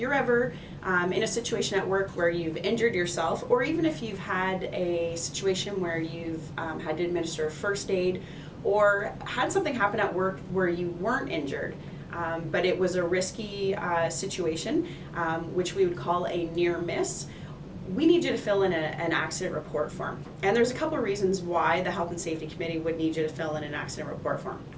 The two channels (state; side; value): identical; both; correlation 1.00